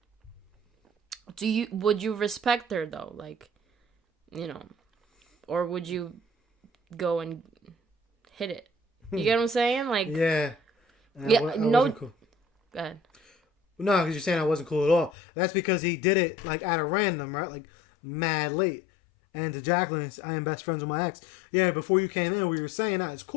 Would you respect her though? Like, you know, or would you go and hit it? You get what I'm saying? Like, yeah. I no. Cool. Go ahead. No, because you're saying I wasn't cool at all. That's because he did it like at a random, right? Like mad late. And to Jacqueline, I am best friends with my ex. Yeah, before you came in, we were saying that it's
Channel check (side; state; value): right; drops out; at 15.1 s